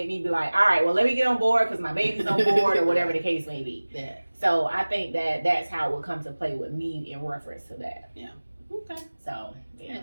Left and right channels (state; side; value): inverted; both; correlation -1.00